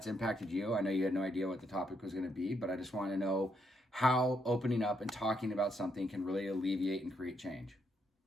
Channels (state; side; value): normal; both; correlation 0.77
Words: impacted you. I know you had no idea what the topic was going to be, but I just want to know how opening up and talking about something can really alleviate and create change.